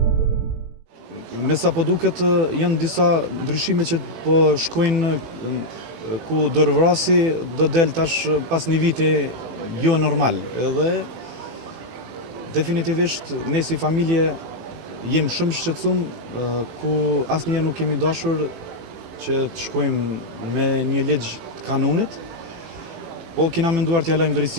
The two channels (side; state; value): left; late; 18 ms